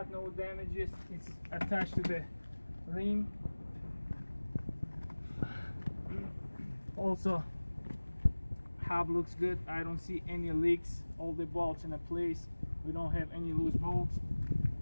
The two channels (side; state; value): both; inverted; correlation -1.00